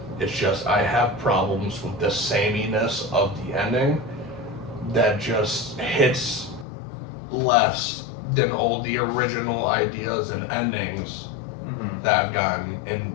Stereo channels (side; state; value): right; drops out; at 6.7 s